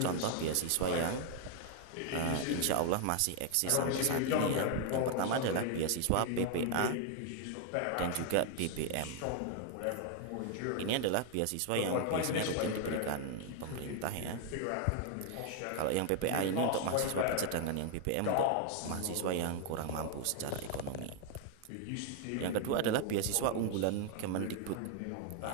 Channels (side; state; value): both; different; correlation 0.00